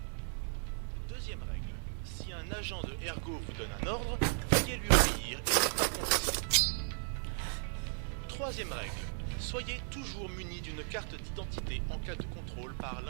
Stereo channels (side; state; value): left; silent; 54 dB below the other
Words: Deuxième règle. Si un agent de Ergo vous donne un ordre, veuillez lui obéir et ne pas contester. Troisième règle. Soyez toujours muni d'une carte d'identité en cas de contrôle par